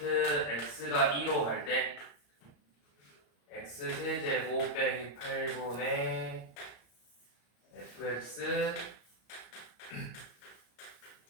x가 2로 갈 때 x 세제곱 빼기 8분의 fx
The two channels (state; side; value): late; right; 34 ms